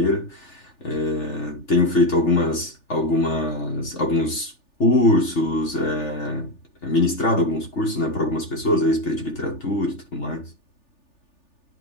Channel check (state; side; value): late; right; 3.4 ms